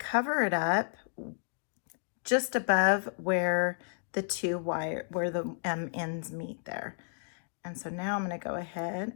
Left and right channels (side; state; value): right; silent; digital silence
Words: it up just above where the ends meet there. And so now I'm going to go ahead